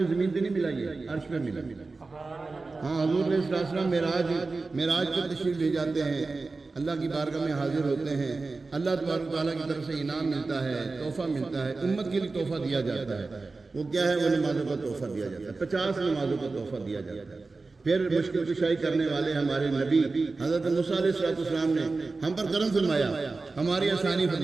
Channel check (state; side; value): quieter; left; 3.8 dB